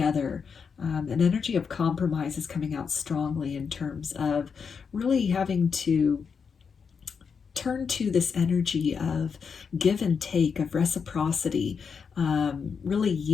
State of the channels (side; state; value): right; quieter; 6.0 dB